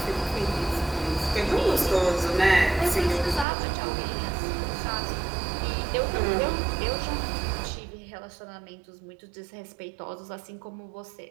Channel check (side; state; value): left; drops out; at 3.5 s